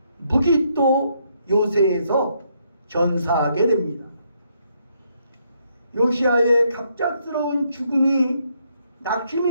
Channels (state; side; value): inverted; both; correlation -0.74